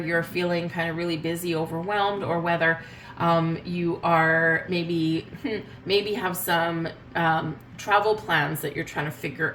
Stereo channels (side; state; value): both; identical; correlation 1.00